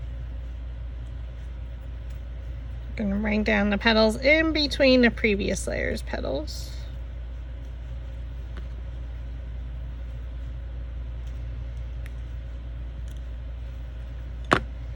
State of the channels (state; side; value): identical; both; correlation 1.00